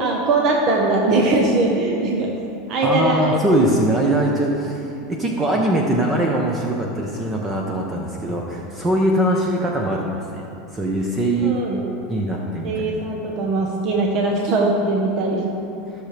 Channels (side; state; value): both; normal; correlation 0.30